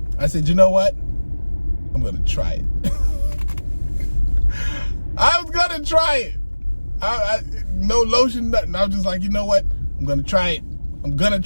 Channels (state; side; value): inverted; both; correlation -1.00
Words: I said, you know what? I'm going to try it. I was going to try it. No lotion, nothing. I was just like, you know what? I'm going to try it. I'm going to